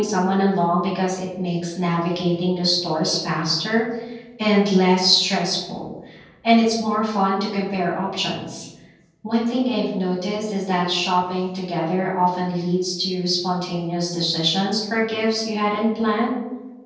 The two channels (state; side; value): identical; both; correlation 1.00